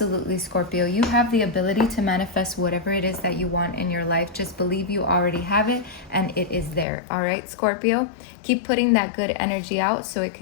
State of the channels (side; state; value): right; drops out; at 6.9 s